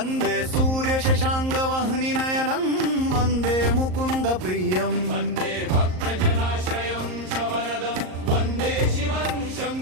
सूर्यशशाङ्गवह्निनयनं वन्दे मुकुन्दप्रियं वन्दे भक्तजनाश्रयं च वरदं वन्दे शिवं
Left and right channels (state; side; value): late; left; 38 ms